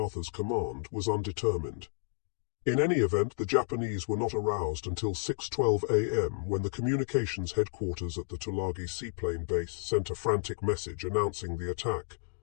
command was undetermined. In any event, the Japanese were not aroused until 6:12 a.m. when the communications headquarters at the Tulagi seaplane base sent a frantic message announcing the attack.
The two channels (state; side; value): silent; right; digital silence